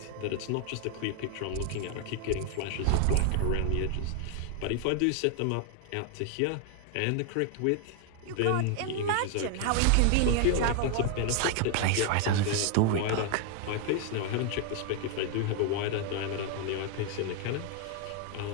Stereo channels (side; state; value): both; different; correlation 0.01